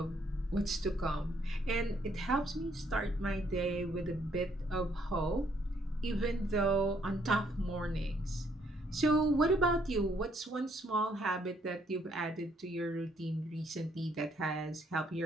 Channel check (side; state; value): both; normal; correlation 0.69